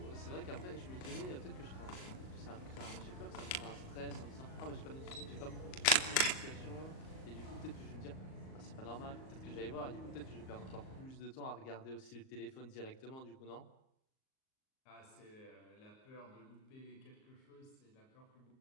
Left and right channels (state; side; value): late; right; 38 ms